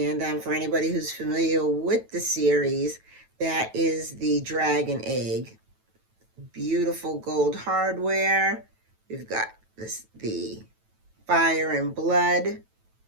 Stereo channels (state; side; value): late; left; 9.1 ms